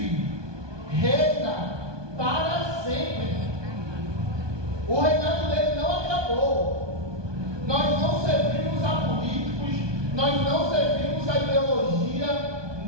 reina para sempre. O reinado dele não acabou. Nós não servimos a políticos, nós não servimos a ideologia,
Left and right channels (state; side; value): late; left; 1.2 ms